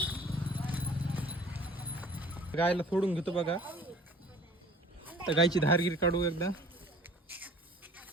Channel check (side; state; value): both; normal; correlation 0.49